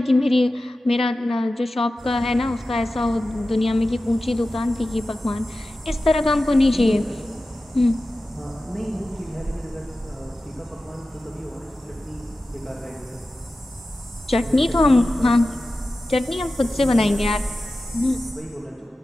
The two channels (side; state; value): both; normal; correlation 0.94